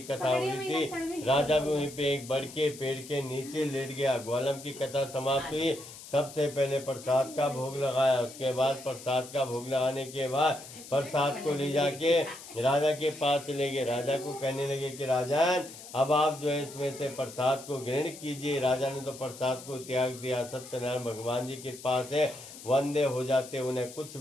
कथा हो रही थी। राजा भी वहीं पे एक बड़ के पेड़ के नीचे लेट गया। ग्वालम की कथा समाप्त हुई। सबसे पहले प्रसाद का भोग लगाया, उसके बाद प्रसाद का भोग लगाने के बाद प्रसाद को ले जाके राजा के पास चले गए। राजा को कहने लगे कि राजन, अब आप जो है इसमें से प्रसाद को ग्रहण कीजिए। राजा ने तो प्रसाद को त्याग दिया। सत्यनारायण भगवान जी के पास है, वंदे हो जाते, उन्हें कुछ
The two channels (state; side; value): noise; left; hiss, 15 dB below the sound